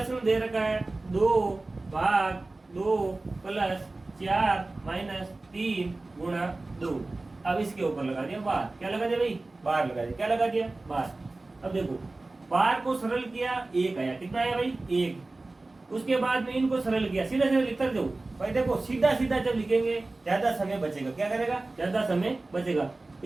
दे रखा है 2 भाग 2 प्लस 4 माइनस 3 गुणा 2। अब इसके ऊपर लगा दिया बार। क्या लगा दिया भाई? बार लगा दिया। क्या लगा दिया? बार। अब देखो बार को सरल किया, 1 आया। कितना आया भाई? 1। उसके बाद में इनको सरल किया, सीधा सीधा लिखकर दो भाई। देखो सीधा सीधा जब लिखेंगे ज्यादा समय बचेगा। क्या करेगा? ज्यादा समय बचेगा।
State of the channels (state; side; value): quieter; left; 3.1 dB